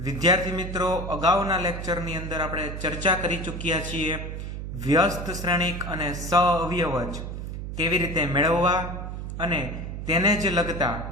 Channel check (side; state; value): right; noise; hum, 6 dB below the sound